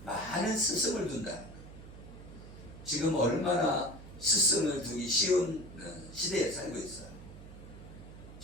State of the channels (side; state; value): right; noise; hum, 15 dB below the sound